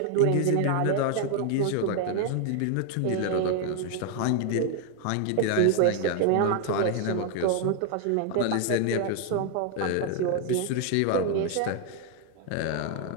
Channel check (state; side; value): different; both; correlation 0.00